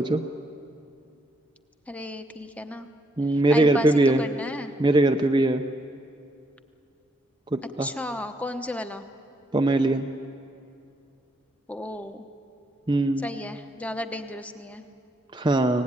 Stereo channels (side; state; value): both; normal; correlation 0.74